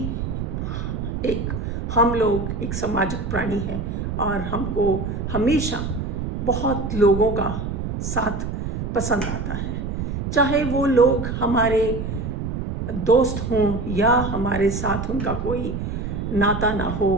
हम लोग एक सामाजिक प्राणी हैं और हमको हमेशा बहुत लोगों का साथ पसंद आता है। चाहे वो लोग हमारे दोस्त हों या हमारे साथ उनका कोई नाता ना हो,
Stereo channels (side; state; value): right; noise; rumble, 4 dB below the sound